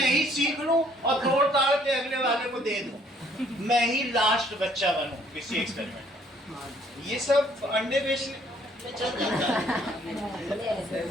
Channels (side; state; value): both; normal; correlation 0.62